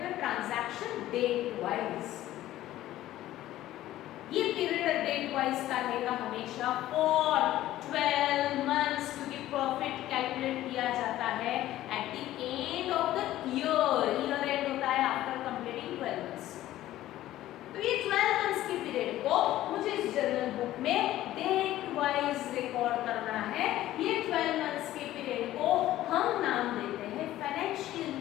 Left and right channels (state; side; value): quieter; right; 14.4 dB